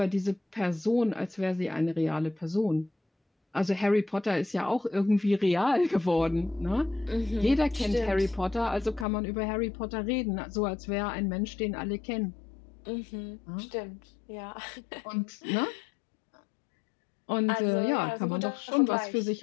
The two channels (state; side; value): drops out; right; at 9.1 s